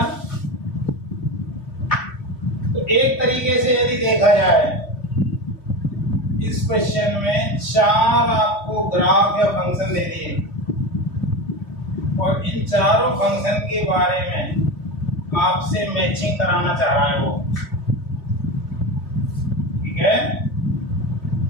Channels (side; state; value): right; late; 3.3 ms